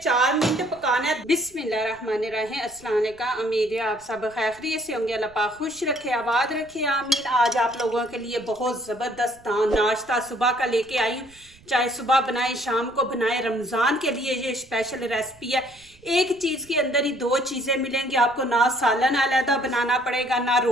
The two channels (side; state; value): right; noise; rumble, 27 dB below the sound